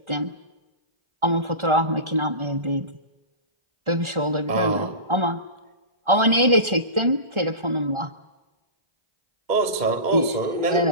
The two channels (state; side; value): late; left; 1.4 ms